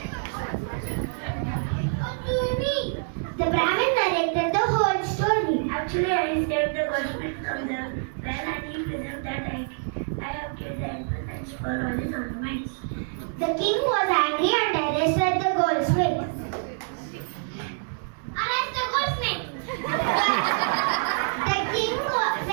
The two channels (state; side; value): silent; left; digital silence